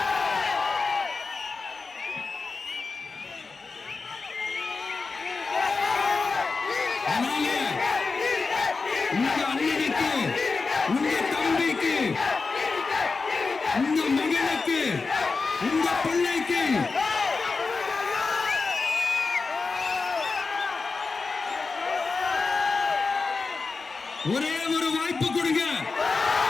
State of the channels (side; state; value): right; quieter; 4.3 dB